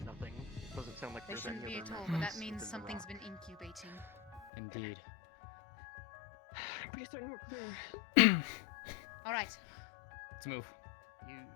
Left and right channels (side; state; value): right; drops out; at 4.5 s